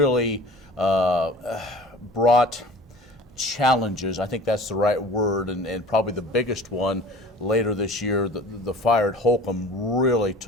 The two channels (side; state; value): both; normal; correlation 0.44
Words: brought challenges. I think that's the right word, and probably the biggest one later this year, the fire at Holcomb really